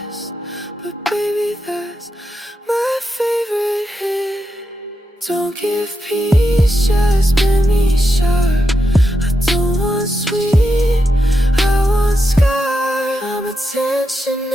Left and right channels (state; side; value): normal; both; correlation 0.86